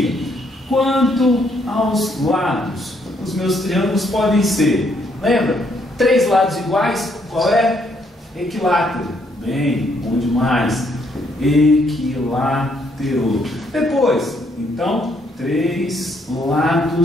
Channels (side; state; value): both; normal; correlation 0.71